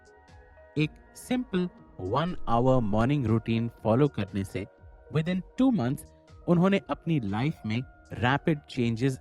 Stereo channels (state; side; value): identical; both; correlation 1.00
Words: एक simple 1 hour morning routine follow करने से विद इन 2 मंथ्स उन्होंने अपनी लाइफ में रैपिड चेंजेस